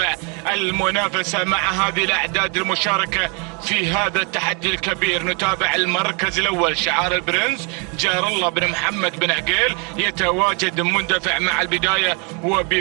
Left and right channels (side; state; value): left; quieter; 35.0 dB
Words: المنافسة مع هذه الاعداد المشاركة في هذا التحدي الكبير. نتابع المركز الاول شعار البرنس جار الله بن محمد بن عقيل يتواجد مندفع مع البداية